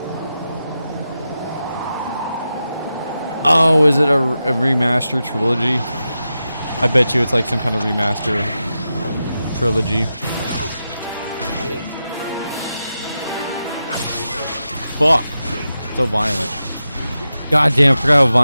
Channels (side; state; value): both; inverted; correlation -0.90